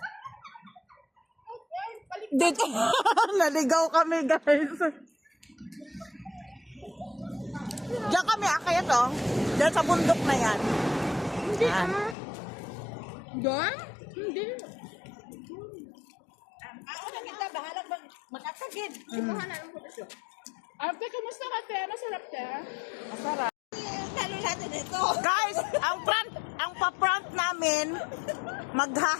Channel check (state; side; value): drops out; right; at 12.2 s